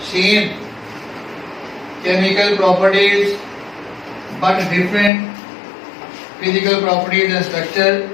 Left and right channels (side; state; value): right; drops out; at 5.1 s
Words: same chemical properties but different physical properties and structure